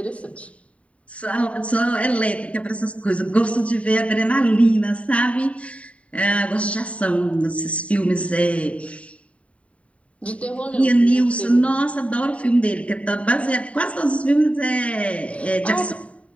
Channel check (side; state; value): right; late; 0.065 ms